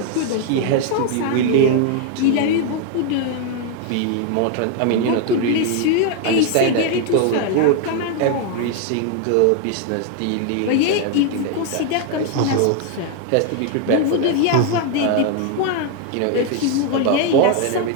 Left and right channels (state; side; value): different; both; correlation 0.01